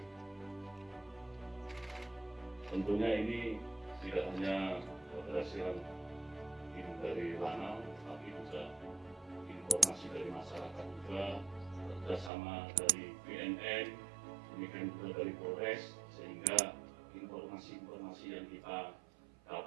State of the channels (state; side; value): drops out; left; at 12.3 s